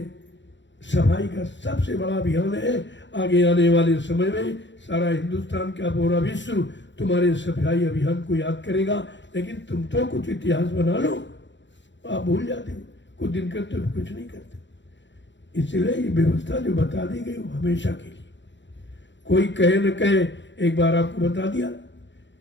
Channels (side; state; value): right; late; 0.53 ms